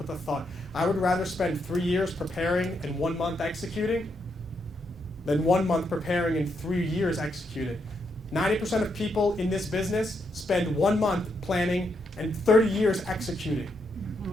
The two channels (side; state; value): both; normal; correlation 0.79